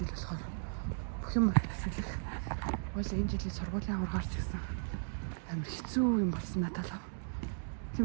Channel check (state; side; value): silent; left; digital silence